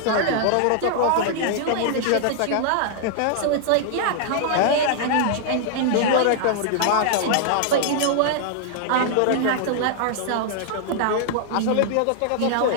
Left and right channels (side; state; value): both; different; correlation -0.01